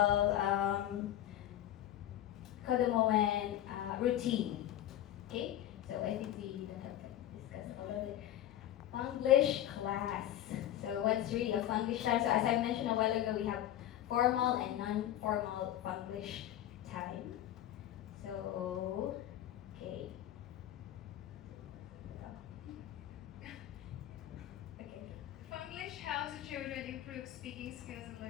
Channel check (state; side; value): quieter; right; 12.4 dB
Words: kodomoen routine. Okay, so I think we don't have to discuss all of it. English class. So what's really a English time? So as I mentioned a while ago, we have formal and non-formal English time. So, okay. English helps the children improve speaking skills and